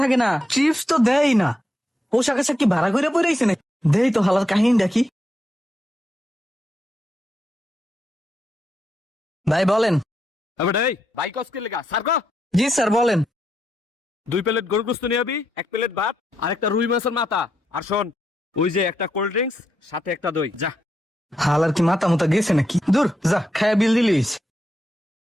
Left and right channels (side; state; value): both; normal; correlation 0.82